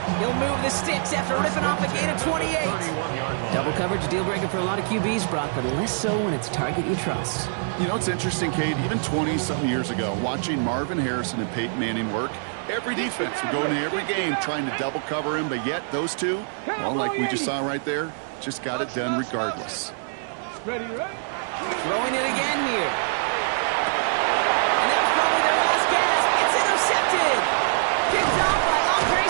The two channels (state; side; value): silent; left; 62 dB below the other